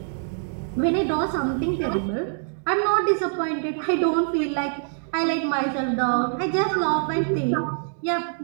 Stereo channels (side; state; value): left; silent; digital silence